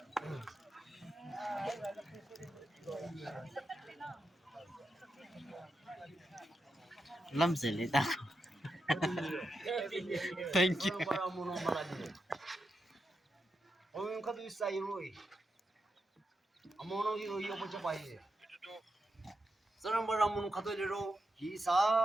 Lamzeli dah. Thank you. Ông có tôi say rồi, ông nó đi rồi ông cho bay. Sau đó bà ông có tôi đi rồi, khi sa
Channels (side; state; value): both; normal; correlation 0.86